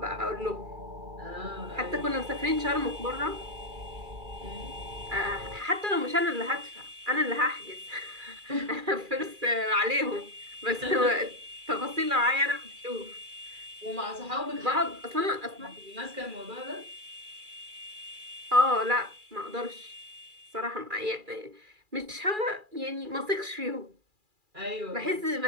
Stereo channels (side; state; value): left; late; 2.4 ms